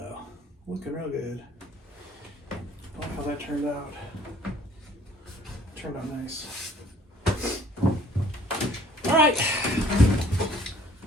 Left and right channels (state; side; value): normal; both; correlation 0.57